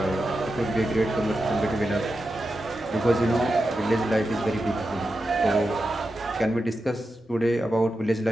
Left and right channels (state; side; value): normal; both; correlation 0.90